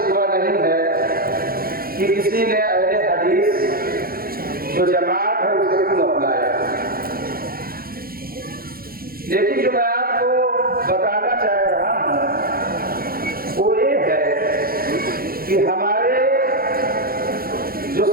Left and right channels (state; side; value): late; left; 0.43 ms